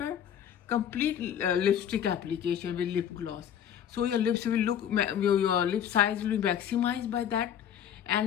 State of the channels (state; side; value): quieter; right; 9.4 dB